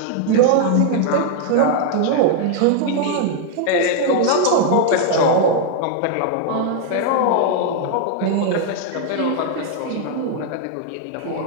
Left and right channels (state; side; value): different; both; correlation 0.00